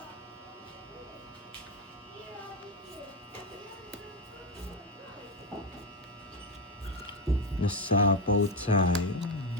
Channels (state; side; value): normal; both; correlation 0.11